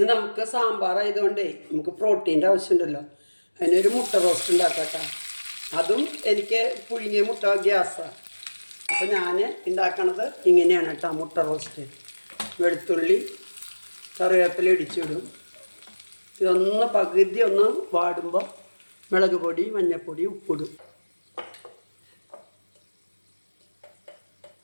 നമുക്ക് സാമ്പാറായതുകൊണ്ടേ നമുക്ക് പ്രോട്ടീൻ്റെ ആവശ്യമുണ്ടല്ലോ. അതിനൊരു മുട്ട റോസ്റ്റ് ഉണ്ടാക്കട്ടെ. അതും എനിക്ക് പുഴുങ്ങിയ മുട്ട ഗ്യാസാണ്. അപ്പോൾ ഞാൻ ഉണ്ടാക്കണത് ഇങ്ങനെയാണ് കേട്ടോ. മുട്ട റോസ്റ്റ് വെളുത്തുള്ളി കറിവേപ്പില ഇടിച്ചിടും. ഇതൊന്ന് പകുതി ഒന്ന് വാടുമ്പോൾ മുളക് പൊടി മഞ്ഞൾപ്പൊടി ഉപ്പിടും.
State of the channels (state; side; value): inverted; both; correlation -1.00